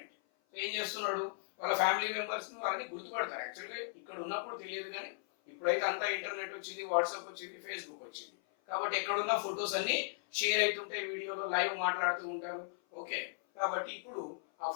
So ఏం చేస్తున్నాడు? వాళ్ళ ఫ్యామిలీ మెంబర్స్ ని వాళ్ళని గుర్తుపడతారు. యాక్చువల్గా ఇక్కడ ఉన్నప్పుడు తెలియదు, కానీ ఇప్పుడైతే అంతా ఇంటర్నెట్ వచ్చింది, వాట్సాప్ వచ్చింది, ఫేస్బుక్ వచ్చింది, కాబట్టి ఎక్కడున్న ఫొటోస్ అన్ని షేర్ అవుతుంటాయి, వీడియోలో లైవ్ మాట్లాడుతూ ఉంటారు. ఓకే, కాబట్టి ఇప్పుడు ఆ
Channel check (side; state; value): right; silent; 53 dB below the other